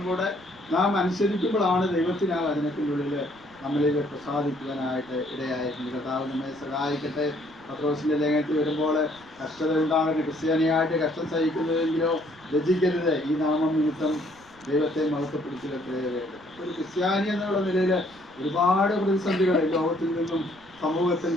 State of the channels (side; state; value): right; noise; rumble, 27 dB below the sound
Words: കൂടെ നാം അനുസരിക്കുമ്പോഴാണ് ദൈവത്തിന് ആ വചനത്തിനുള്ളിൽ നമ്മളിൽ പ്രസാദിക്കുവാനായിട്ട് ഇടയായിട്ടുണ്ട്. കർത്താവ് നമ്മെ സഹായിക്കട്ടെ. പത്രോസിൻ്റെ ലേഖനത്തിൽ വരുമ്പോൾ കഷ്ടത ഉണ്ടാകരുത്, ക്രിസ്ത്യാനിയായിട്ട് കഷ്ടം സഹിക്കുന്നതെങ്കിലോ ലജ്ജിക്കരുത്, ഈ നാമം നിമിത്തം ദൈവത്തെ മഹത്വപ്പെടുത്തിയിട്ടേ വേണ്ടത്. ഒരു ക്രിസ്ത്യാനി എന്നുള്ള നിലയിൽ ഒരുപാട് പ്രതിസന്ധികൾ ലോകത്തിൽ നിന്നും സമൂഹത്തിൽ